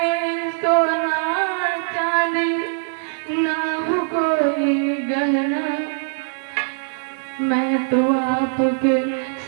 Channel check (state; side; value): silent; left; 55 dB below the other